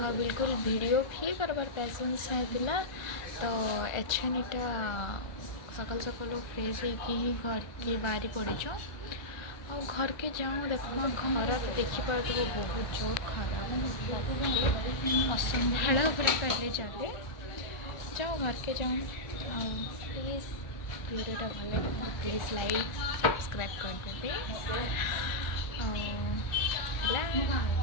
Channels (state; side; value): late; right; 1.3 ms